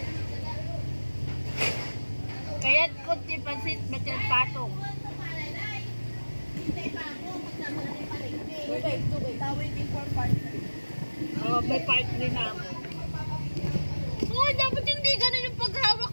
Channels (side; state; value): both; inverted; correlation -1.00